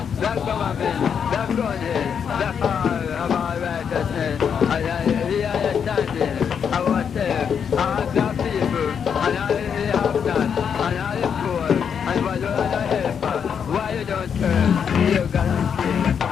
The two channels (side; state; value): right; quieter; 7.3 dB